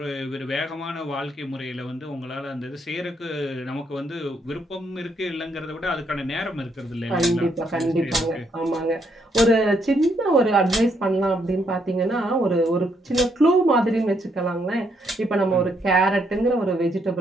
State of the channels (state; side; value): normal; both; correlation 0.74